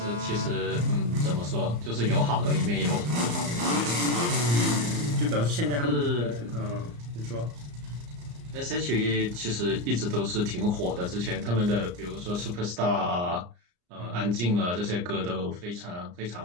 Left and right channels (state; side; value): late; left; 34 ms